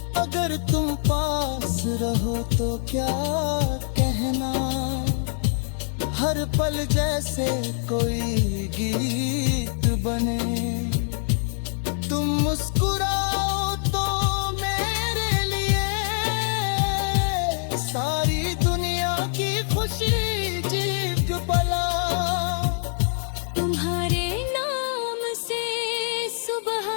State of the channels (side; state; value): right; silent; digital silence